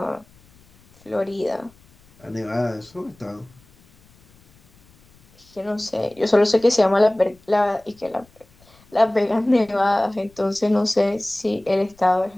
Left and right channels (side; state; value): left; noise; rumble, 30 dB below the sound